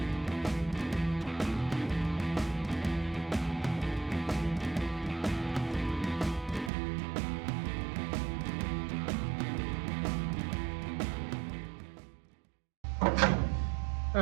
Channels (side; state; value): left; drops out; at 6.7 s